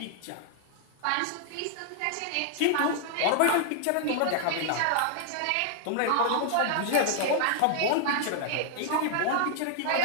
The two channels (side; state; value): both; different; correlation 0.00